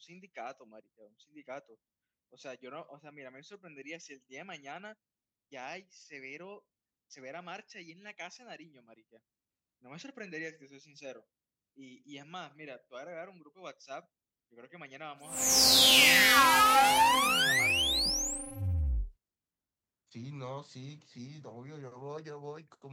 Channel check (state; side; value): identical; both; correlation 1.00